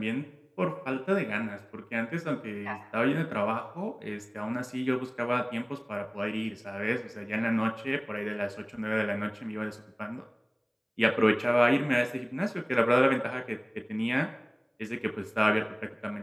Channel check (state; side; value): identical; both; correlation 1.00